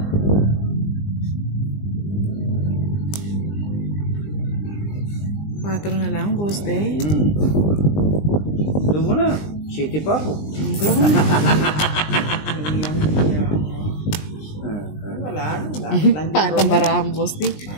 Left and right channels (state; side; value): late; right; 20 ms